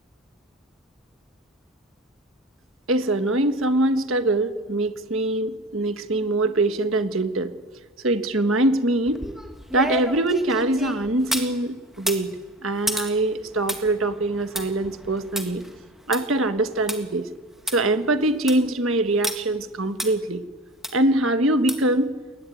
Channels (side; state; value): both; normal; correlation 0.34